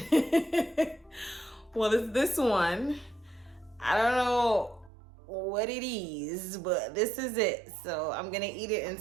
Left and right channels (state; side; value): drops out; left; at 4.9 s